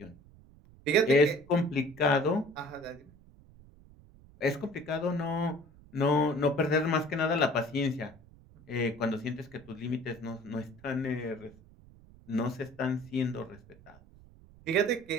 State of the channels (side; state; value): right; noise; rumble, 24 dB below the sound